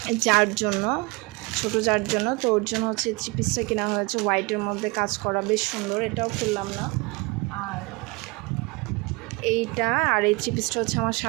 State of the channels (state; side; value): quieter; left; 26.1 dB